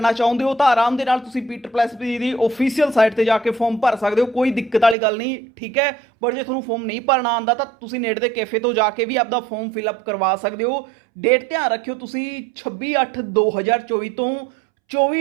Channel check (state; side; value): drops out; left; at 5.0 s